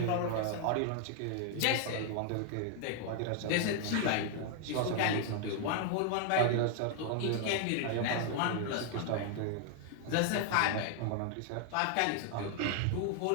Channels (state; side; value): different; both; correlation 0.00